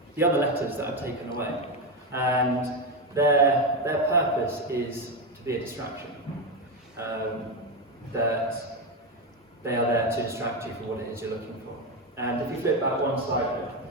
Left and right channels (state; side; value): normal; both; correlation 0.10